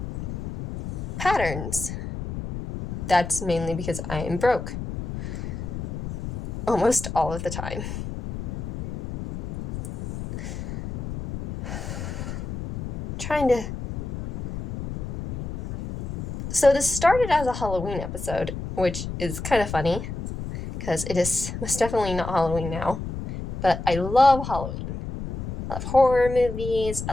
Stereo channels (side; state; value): left; noise; rumble, 6 dB below the sound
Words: patterns. That's mainly because I am broke almost all of the time. So this started as a Halloween episode, which is kind of funny because it is most definitely not Halloween now, but I love Halloween. I love horror movies,